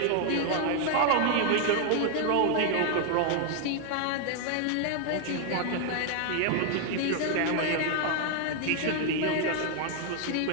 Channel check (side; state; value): both; different; correlation 0.00